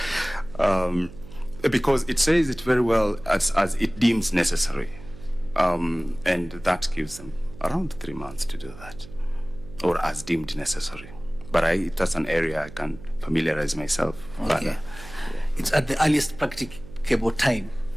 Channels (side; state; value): right; noise; hum, 17 dB below the sound